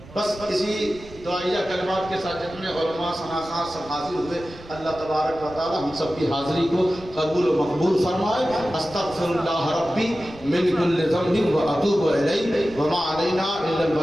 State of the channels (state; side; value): noise; right; rumble, 19 dB below the sound